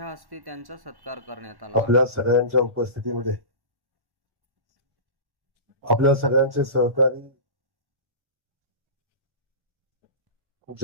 हस्ते त्यांचा सत्कार करण्यात आला. आपल्या सगळ्यांच्या उपस्थितीमध्ये आपल्या सगळ्यांचे सहकारी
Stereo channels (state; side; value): late; left; 1.1 ms